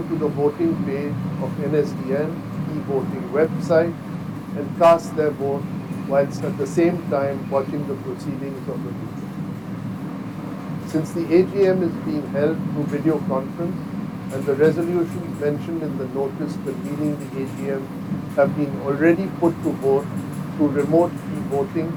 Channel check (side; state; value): left; noise; hum, 28 dB below the sound